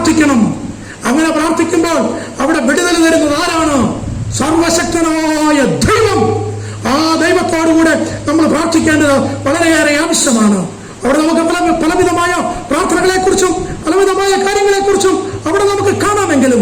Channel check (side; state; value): both; identical; correlation 1.00